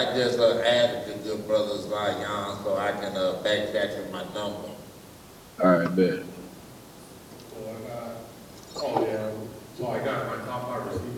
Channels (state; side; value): identical; both; correlation 1.00